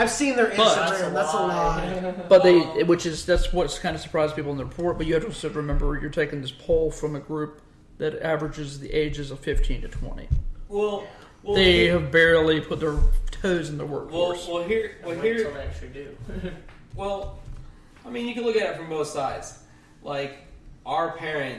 seen their But- Instagram. That's a lie. But that's what's kind of surprised people in the report. But you have to also remember you're taking this poll from a group that averages the ages of 15 to 20. Well, They have barely put their toes in the workforce. here, Wait till they actually do. well, I mean, you can look at it from both sides. Like, our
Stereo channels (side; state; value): both; identical; correlation 1.00